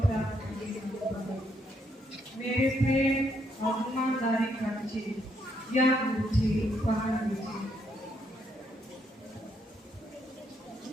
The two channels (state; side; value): normal; both; correlation 0.74